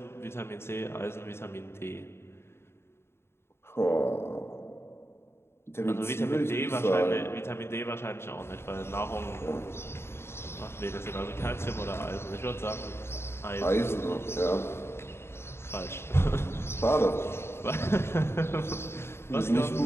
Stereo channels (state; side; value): late; right; 0.12 ms